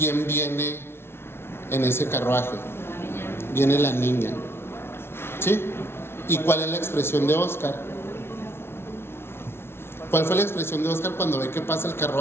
viene en ese carruaje? Viene la niña, ¿sí? ¿Y cuál es la expresión de Oscar? ¿Cuál fue la expresión de Oscar cuando ve que pasa el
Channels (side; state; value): right; late; 0.12 ms